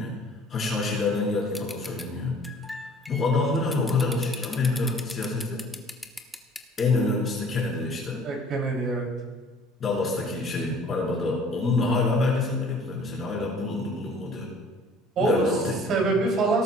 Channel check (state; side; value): normal; both; correlation 0.52